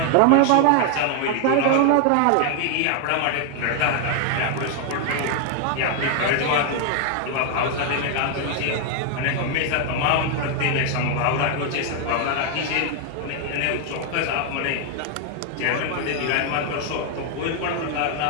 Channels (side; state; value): both; different; correlation 0.00